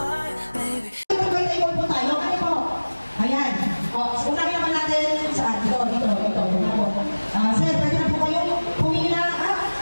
baby. Ito po tayo, ano po? Ayan. O, unahin naman natin saan? Ito. Sir, pwede na po kayo pumila.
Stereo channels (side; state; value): both; inverted; correlation -1.00